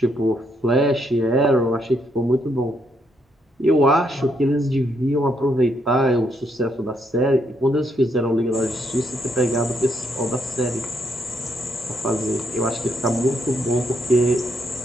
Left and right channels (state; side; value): normal; both; correlation 0.75